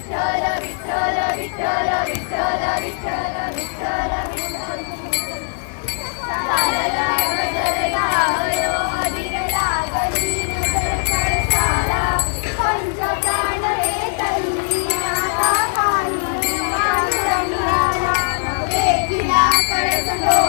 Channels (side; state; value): right; silent; digital silence